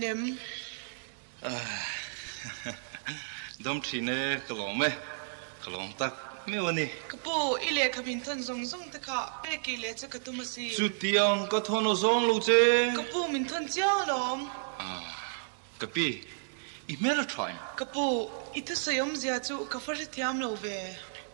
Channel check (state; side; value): silent; left; digital silence